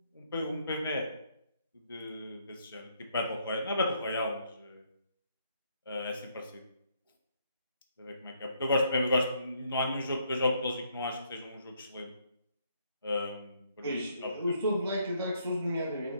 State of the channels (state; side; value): inverted; both; correlation -0.70